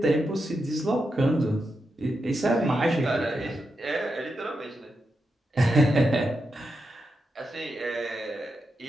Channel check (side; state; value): both; normal; correlation 0.87